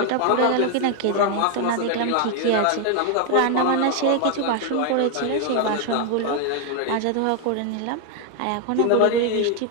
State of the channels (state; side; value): different; both; correlation 0.00